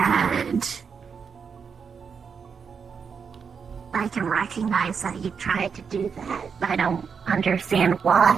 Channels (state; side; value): quieter; left; 6.2 dB